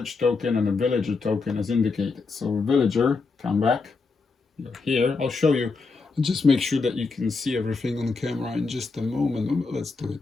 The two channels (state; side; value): quieter; right; 4.3 dB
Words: token and a villager token as indicated. So villager, come back. You're here. I'll show you. Just make sure that you can see everything on camera in just a moment. Let's do it